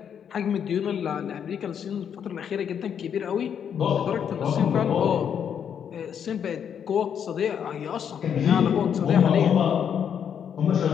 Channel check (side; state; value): right; quieter; 8.2 dB